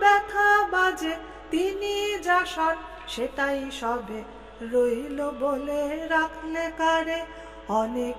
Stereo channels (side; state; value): both; identical; correlation 1.00